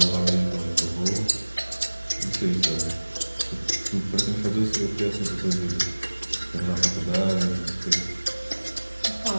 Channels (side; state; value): both; inverted; correlation -1.00